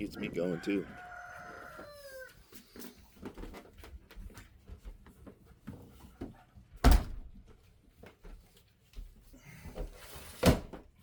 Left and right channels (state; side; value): identical; both; correlation 1.00